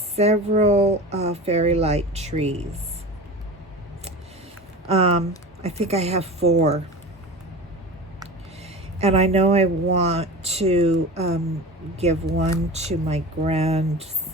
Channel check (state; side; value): normal; both; correlation 0.32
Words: fairy light trees. I think I have 4. And I know I want to give one to my